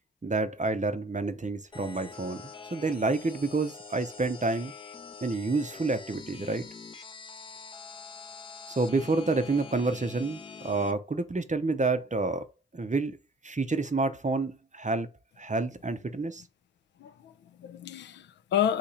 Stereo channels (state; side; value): normal; both; correlation 0.51